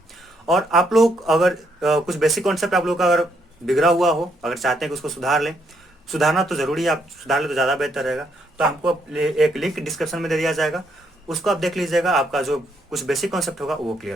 और आप लोग अगर कुछ बेसिक कॉन्सेप्ट आप लोग का अगर बिगड़ा हुआ हो, अगर चाहते हैं कि उसको सुधार लें, सुधारना तो जरूरी है, आप सुधार ले तो ज़्यादा बेहतर रहेगा। तो आपको एक लिंक डिस्क्रिप्शन में दे दिया जाएगा, उसको आप देख लीजिएगा, आपका जो कुछ बेसिक कॉन्सेप्ट होगा वो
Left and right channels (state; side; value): normal; both; correlation 0.74